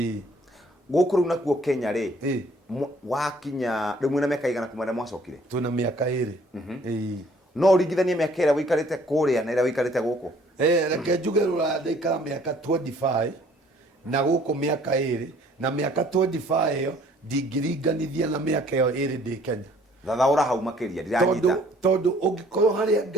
guku riu nakuo Kenya ri wakinya riu mwina miaka igana kumana mwacokire tuna miaka 2 no ringithanie miaka ira wikarite kuria na ira wikarite guku reke njuge rura ndaikara miaka 25 na guku miaka 2 na miaka 25 iyo ndingiringanithia na miaka iyo 2 ndi Kenya thathaura hau makiria ndiranyita tondu ungikorwo haria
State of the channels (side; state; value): both; normal; correlation 0.58